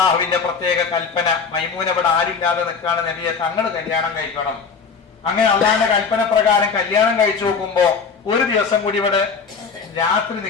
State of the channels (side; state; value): right; quieter; 5.5 dB